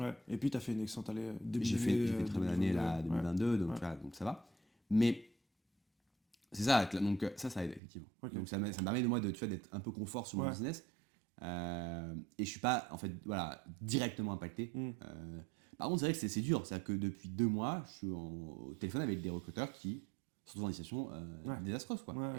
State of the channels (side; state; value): left; drops out; at 7.8 s